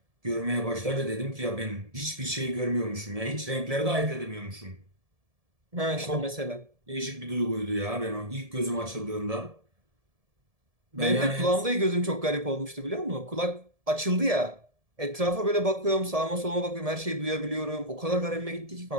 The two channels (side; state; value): left; late; 1.7 ms